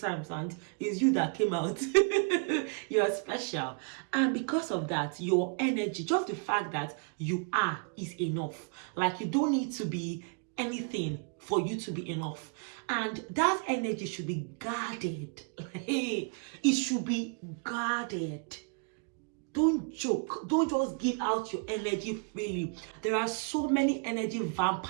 and it's you that came out. You're special. And because of that, your energy, just the fact that you are, is enough. Like, you don't need to be anything for you to be enough. And that energy should be guarded. It should be guarded. Don't joke. Don't just give out your energy freely. There are so many energy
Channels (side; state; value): left; quieter; 37.8 dB